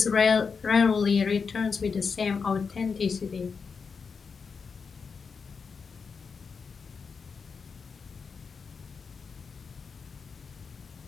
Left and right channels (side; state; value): right; quieter; 5.5 dB